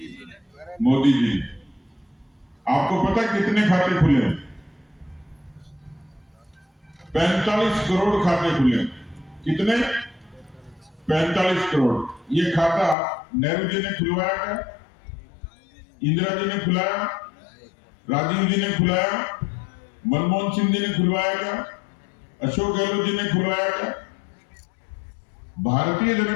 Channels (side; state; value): right; drops out; at 13.0 s